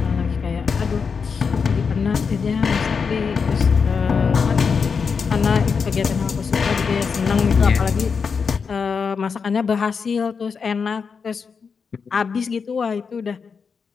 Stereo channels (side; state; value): right; quieter; 5.7 dB